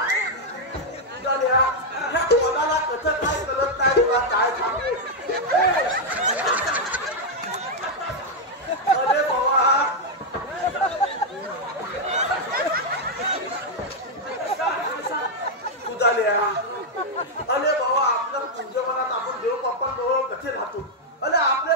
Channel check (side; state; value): both; normal; correlation -0.01